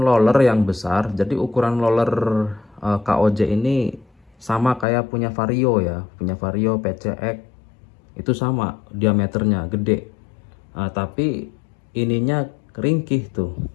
loler yang besar, jadi ukuran loler KOJ ini sama kayak punya Vario ya, punya Vario PCX itu sama diameternya gede. Tapi ininya ringkih tuh,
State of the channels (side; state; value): right; drops out; at 4.9 s